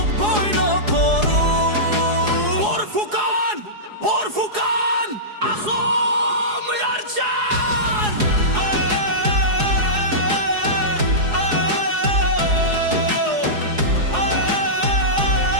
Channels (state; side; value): late; left; 4.8 ms